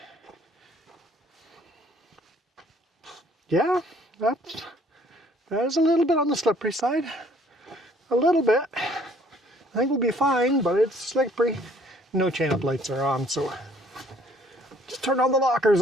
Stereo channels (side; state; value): both; normal; correlation 0.59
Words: Yeah, that is a little bit on the slippery side. A little bit. I think we'll be fine, but it's slippery. No chain-up lights are on, so just turn all the